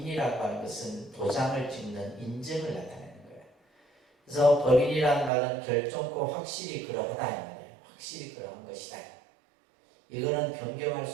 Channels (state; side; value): drops out; left; at 5.3 s